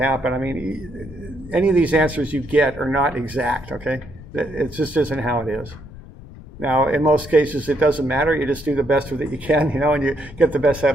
I mean, any of these answers you get are not exact, okay? It just isn't how it is. Now, in most cases, it doesn't matter. You just do the best with it you can, you know, and you get the best head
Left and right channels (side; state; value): left; noise; rumble, 17 dB below the sound